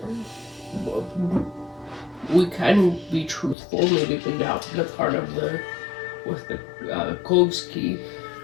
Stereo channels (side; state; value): right; drops out; at 3.6 s